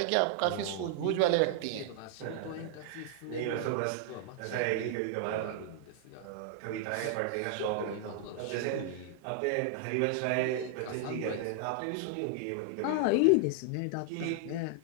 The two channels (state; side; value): different; both; correlation 0.00